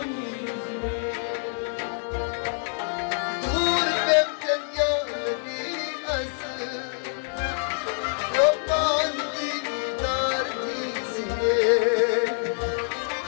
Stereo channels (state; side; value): silent; right; 59 dB below the other